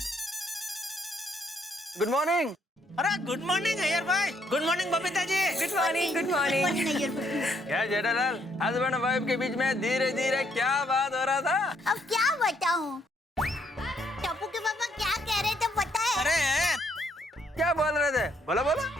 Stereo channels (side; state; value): both; normal; correlation 0.70